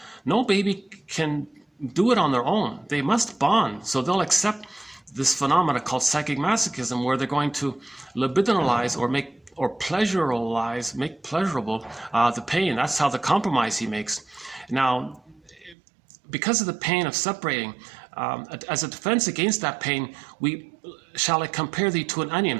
No baby can do it on their own. They must bond. So they'll accept this phenomena called psychic masochism, where they're going to libidinalize or make pleasurable the pain. That's how the compromise he makes. Now, because of the pain of separating, as a defense against that pain, shall I compare thee to an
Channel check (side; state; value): left; drops out; at 15.8 s